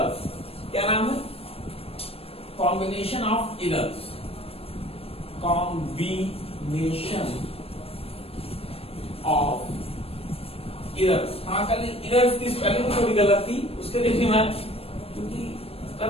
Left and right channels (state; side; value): late; right; 0.28 ms